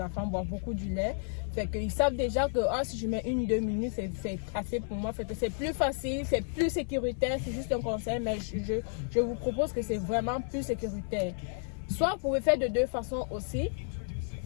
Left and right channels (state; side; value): silent; right; 57 dB below the other